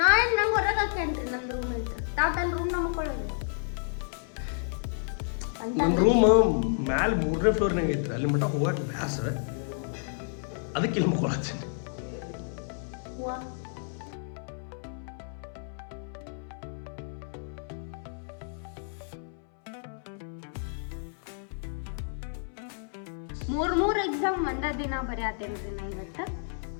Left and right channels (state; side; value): silent; right; 58 dB below the other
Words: ಹೊರಗೆ ಹಾಕೇನ್ರಿ ನನ್ನ ರೂಮ್ ಅಂತ. ತಾವು ತನ್ನ ರೂಮ್ನಾಗ ಮುಕ್ಕೊಳ್ಳೋದು. ನನ್ನ ರೂಮ್ ಮ್ಯಾಲೆ 3ನೇ ಫ್ಲೋರ್ನಾಗ ಐತ್ರಿ. ಅಲ್ಲಿ ಮಟ್ಟ ಹೋಗಕ್ಕೆ ಬ್ಯಾಸರ, ಅದಕ್ಕೆ ಇಲ್ಲಿ ಮುಕ್ಕೊಳತ್ತೀನಿ. ಮೂರ್ ಎಕ್ಸಾಮ್ ಒಂದ ದಿನ ಬರೆಯತ್ತೇನ್ರಿ ನಾ ಇವತ್ತು.